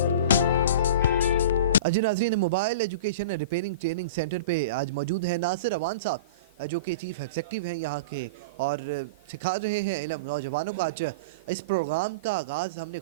جی ناظرین، mobile education repairing training centre پہ آج موجود ہیں ناصر اوان صاحب، جو کہ چیف ایگزیکٹو ہیں یہاں کے، اور سکھا رہے ہیں علم نوجوانوں کو۔ آج اس پروگرام کا آغاز ہم نے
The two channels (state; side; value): inverted; both; correlation -0.33